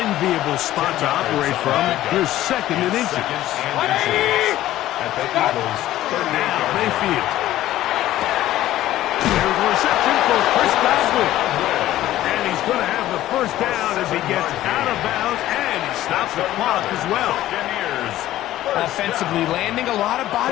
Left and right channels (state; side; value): quieter; right; 14.3 dB